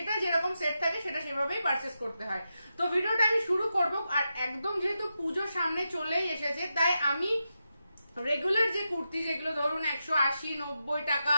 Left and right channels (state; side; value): inverted; both; correlation -0.88